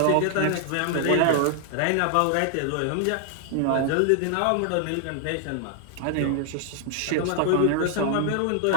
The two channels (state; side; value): different; both; correlation 0.00